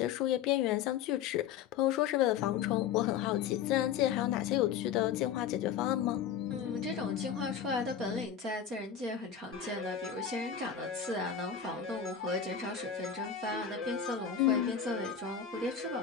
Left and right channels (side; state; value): right; quieter; 7.9 dB